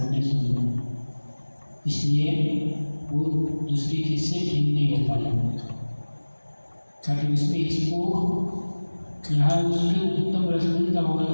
नहीं समझा, इसलिए वो दूसरी चीज से भिन्न नहीं हो पाया। ताकि उसमें इसको यहाँ उसके उत्तम रस मिलता होगा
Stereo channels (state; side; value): inverted; both; correlation -1.00